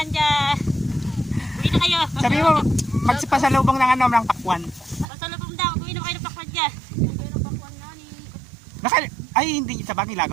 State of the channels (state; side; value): drops out; left; at 5.1 s